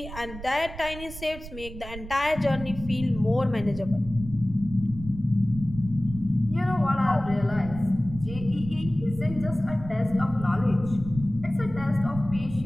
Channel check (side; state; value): right; noise; rumble, 12 dB below the sound